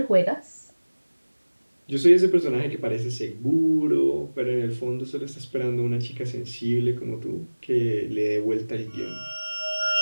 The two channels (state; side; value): inverted; both; correlation -1.00